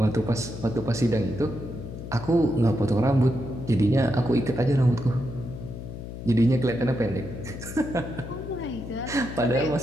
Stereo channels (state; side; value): noise; left; hum, 10 dB below the sound